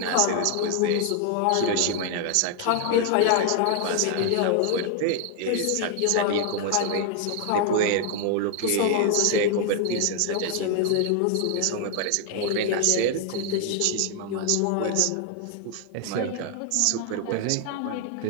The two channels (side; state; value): both; different; correlation 0.00